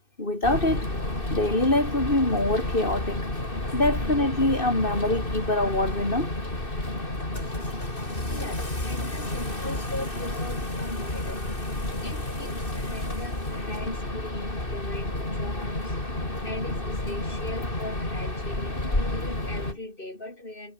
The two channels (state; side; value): late; right; 2.6 ms